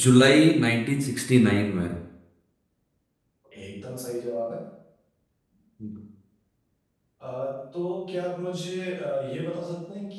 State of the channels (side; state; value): both; identical; correlation 1.00